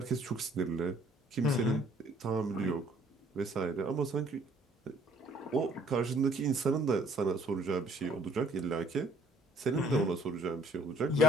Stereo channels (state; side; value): normal; both; correlation 0.59